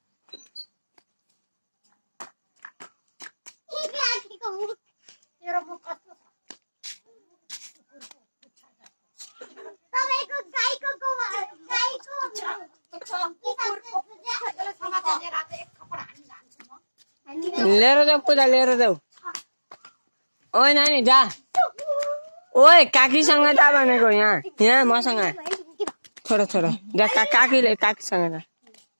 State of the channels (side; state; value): both; inverted; correlation -1.00